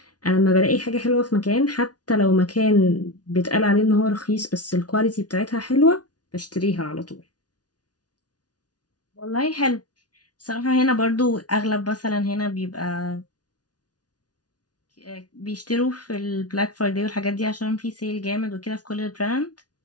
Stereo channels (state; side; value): late; right; 0.69 ms